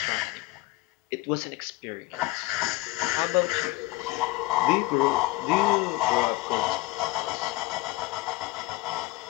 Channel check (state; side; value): quieter; right; 19.5 dB